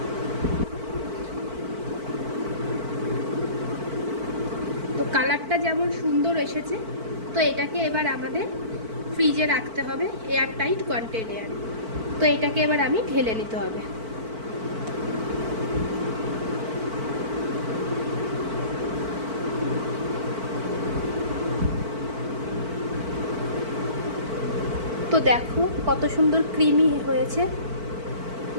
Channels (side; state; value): left; late; 4.5 ms